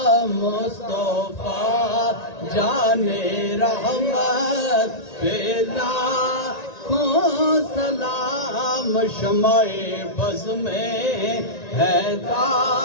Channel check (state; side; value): late; right; 1.9 ms